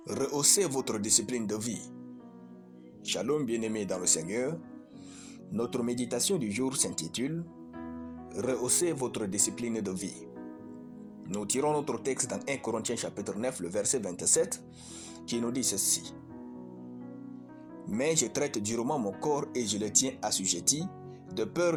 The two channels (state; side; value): identical; both; correlation 1.00